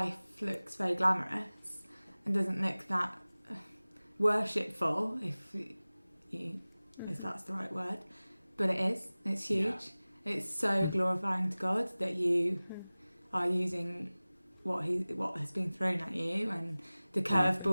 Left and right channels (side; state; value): both; inverted; correlation -0.99